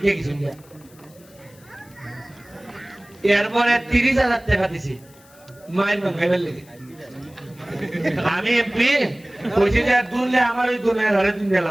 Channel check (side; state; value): left; noise; hiss, 27 dB below the sound